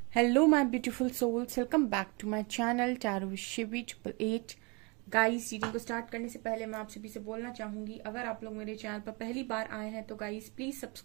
Hello my beautiful souls, welcome back to my channel Tarot with Shivi 888। Guys, reading को start करने से पहले मैं आप सभी से बोलना चाहूंगी, अगर आप लोग मेरे चैनल पर पहली बार आए हैं तो guys please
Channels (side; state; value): left; quieter; 29.9 dB